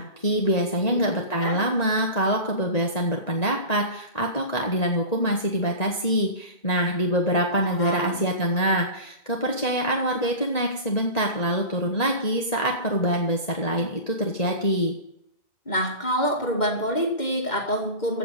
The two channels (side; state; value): right; late; 1.9 ms